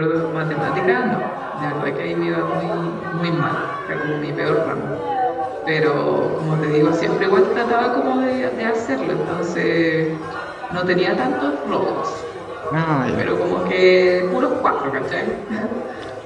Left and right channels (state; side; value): identical; both; correlation 1.00